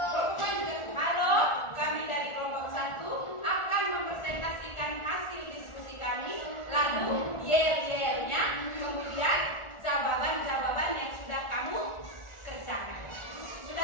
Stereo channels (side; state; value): right; late; 1.4 ms